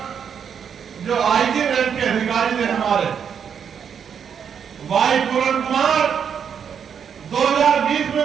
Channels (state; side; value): quieter; left; 7.5 dB